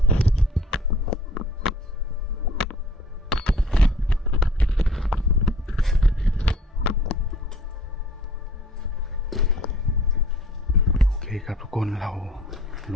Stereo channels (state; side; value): normal; both; correlation 0.52